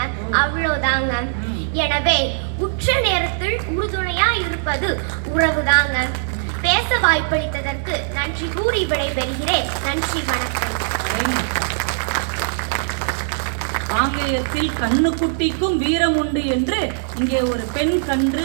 அவ்வளவுதாங்க. எனவே உச்ச நேரத்தில் உறுதுணையா இருப்பது உறவுதாங்க. பேச வாய்ப்பளித்ததற்கு நன்றி கூறி விடைபெறுகிறேன். நன்றி, வணக்கம். காங்கேயத்தில் கண்ணுக்குட்டிக்கும் வீரம் உண்டு என்று இங்கே ஒரு பெண் கன்று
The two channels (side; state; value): left; silent; 65 dB below the other